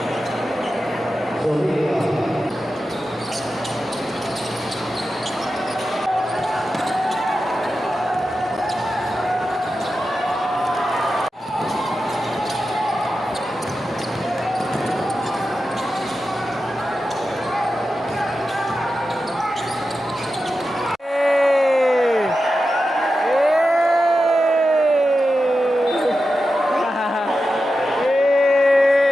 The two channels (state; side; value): normal; both; correlation 0.91